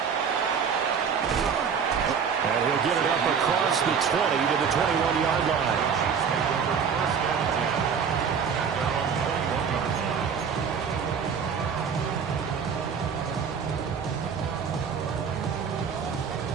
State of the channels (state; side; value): quieter; left; 6.7 dB